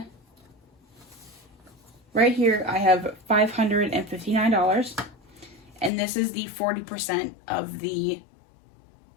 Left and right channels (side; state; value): right; drops out; at 5.9 s